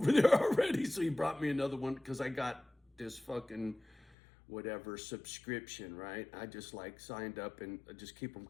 there already, so he brought me another one because I got this fucking whatever subscription, right? I just like signed up and I just keep them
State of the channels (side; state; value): right; drops out; at 4.2 s